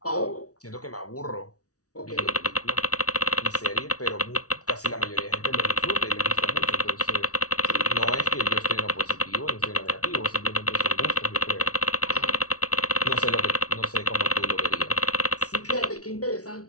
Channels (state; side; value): late; right; 0.67 ms